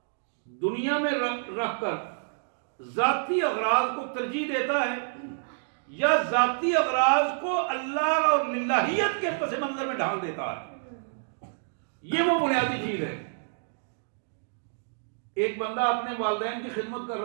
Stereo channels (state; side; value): silent; left; digital silence